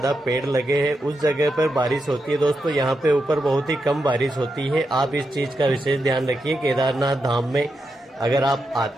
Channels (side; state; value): both; normal; correlation 0.86